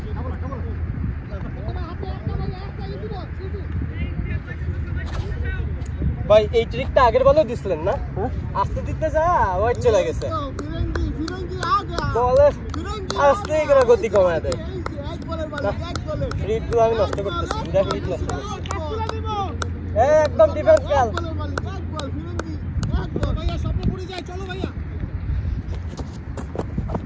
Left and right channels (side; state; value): both; identical; correlation 1.00